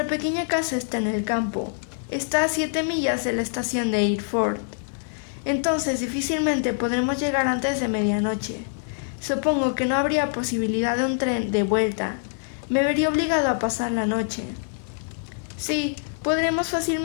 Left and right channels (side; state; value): right; silent; digital silence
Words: pequeña casa está en el campo. Está a 7 millas de la estación de Eyford. Entonces difícilmente podremos llegar antes de medianoche. Supongo que no habría posibilidad de un tren de vuelta. Me vería obligado a pasar la noche. Sí, podremos